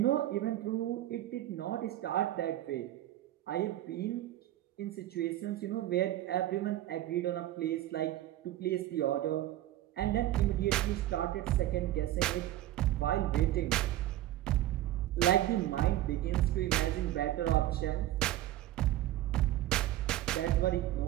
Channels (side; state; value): left; quieter; 14.1 dB